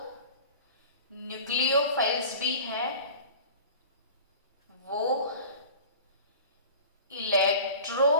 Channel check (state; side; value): inverted; both; correlation -0.39